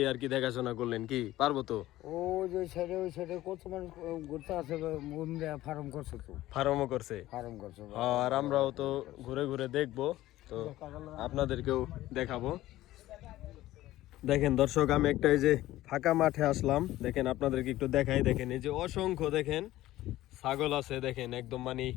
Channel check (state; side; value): quieter; right; 15.7 dB